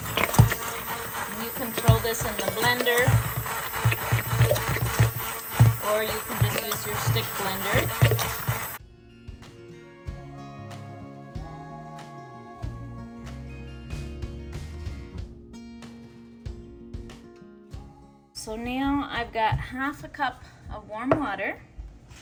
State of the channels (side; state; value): both; identical; correlation 1.00